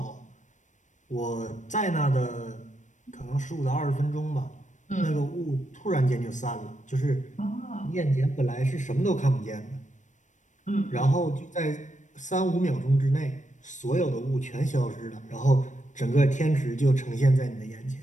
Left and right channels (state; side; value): late; right; 0.36 ms